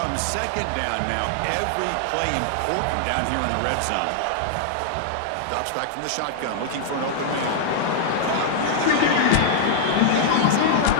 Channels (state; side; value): different; both; correlation -0.01